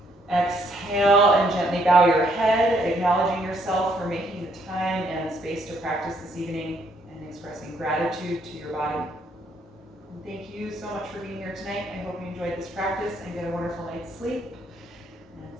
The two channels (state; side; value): normal; both; correlation 0.69